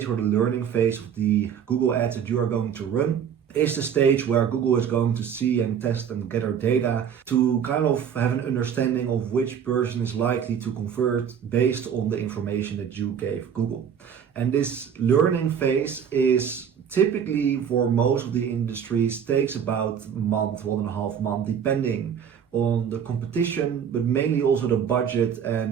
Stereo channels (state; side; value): quieter; left; 8.0 dB